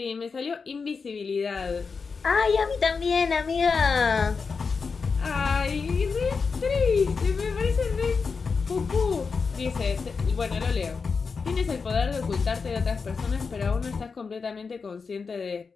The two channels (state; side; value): quieter; right; 5.1 dB